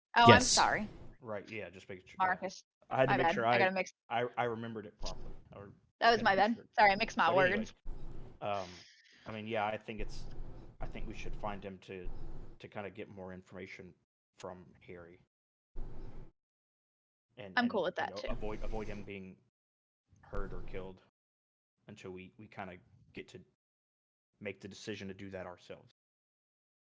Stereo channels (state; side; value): identical; both; correlation 1.00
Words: Oh, I'm Yes. sorry, Right? Yeah, just making sure. Yeah. Marcus. I had to My make bad. sure I gotta mix. I remembered it properly. Or That was had to my make bad. sure. Sorry, I mixed my But words. anyway, I mean, I think we should find him to kind of get more information from Harry. I'm cool with that too. Avoid him being hurt or killed until we kind of get to make the decision to do that ourselves.